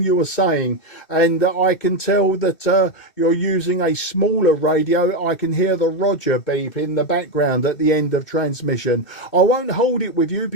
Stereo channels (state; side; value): late; right; 2.6 ms